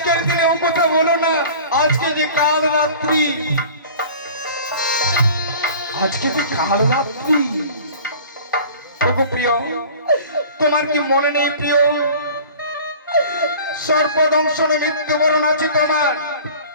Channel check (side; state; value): both; inverted; correlation -0.43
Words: দিনে ও কথা বলো না আজকে যে কাল রাত্রি প্রিয় তোমার কি মনে নেই প্রিয় সর্বদংশন মৃত্যুবরণ আছে তোমার